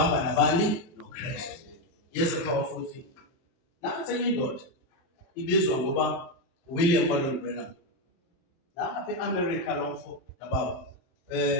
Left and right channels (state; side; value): late; right; 23 ms